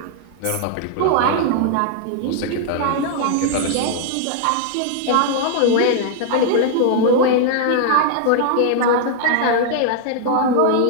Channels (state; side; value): different; both; correlation 0.00